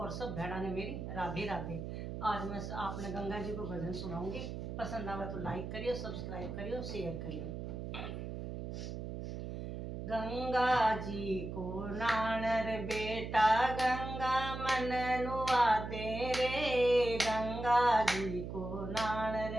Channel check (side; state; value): right; noise; hum, 6 dB below the sound